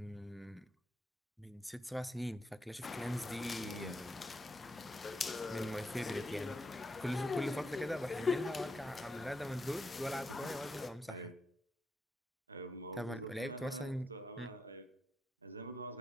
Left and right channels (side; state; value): both; normal; correlation 0.83